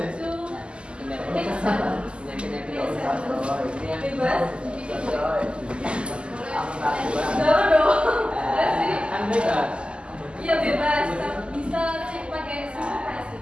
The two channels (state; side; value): late; left; 0.051 ms